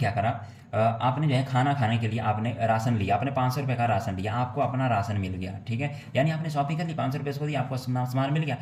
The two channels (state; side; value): identical; both; correlation 1.00